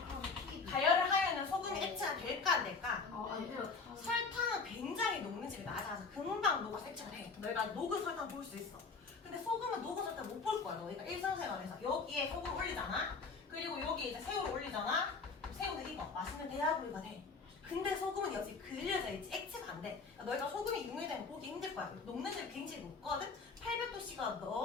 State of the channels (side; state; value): right; quieter; 4.5 dB